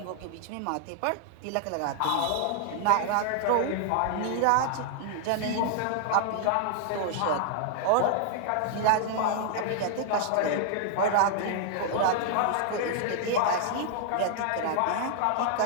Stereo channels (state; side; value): different; both; correlation -0.01